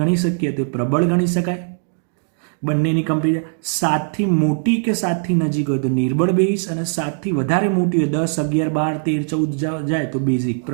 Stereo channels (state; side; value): silent; left; digital silence